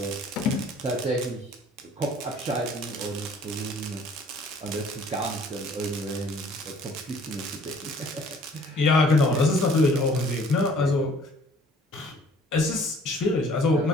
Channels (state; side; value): normal; both; correlation 0.55